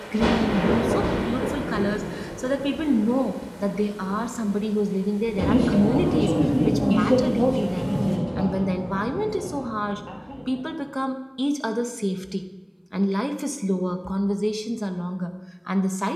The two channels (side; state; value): both; identical; correlation 1.00